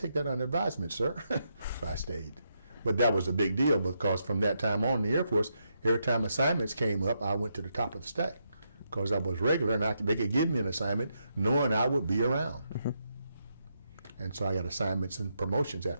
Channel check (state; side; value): inverted; both; correlation -0.81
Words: that under advisement, sir. So I stayed. But that was a big deal because from that time on in the Air Force, every time assignments came up, I went to the top of the stack because I was regular, and they could give me an assignment knowing I would be around. And so I got assignments and promotions